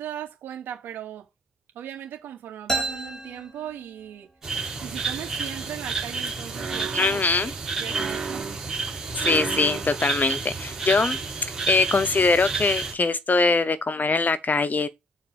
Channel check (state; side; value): normal; both; correlation 0.56